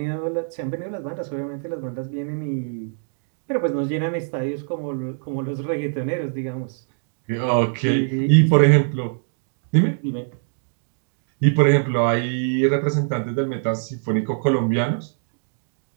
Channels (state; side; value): silent; left; 63 dB below the other